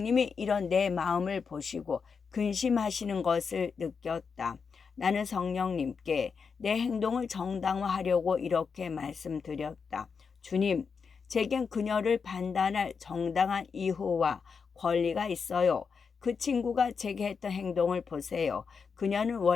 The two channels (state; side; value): quieter; right; 5.7 dB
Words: 이런 내 마음을 보시고 근심하시는 것을 느꼈다. 나는 성령님께 내 행동을 정당화하려고 이렇게 말씀드렸다. 주님, 제겐 그녀를 판단할 정당한 이유와 권리가 있어요. 그 친구가 제게 했던 행동을 보세요. 그녀는